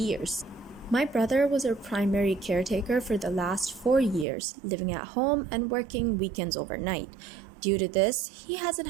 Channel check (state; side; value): drops out; left; at 4.2 s